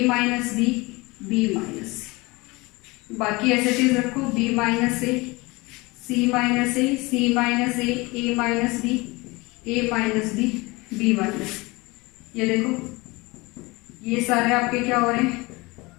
minus B, B minus C. बाकी ऐसे चीज रखो, B minus A, C minus A, C minus A minus B, A minus B, B minus. ये देखो ये सारे आपके क्या हो रहे हैं,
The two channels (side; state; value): right; quieter; 23.8 dB